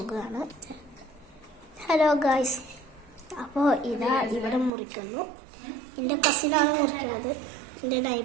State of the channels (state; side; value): drops out; left; at 4.7 s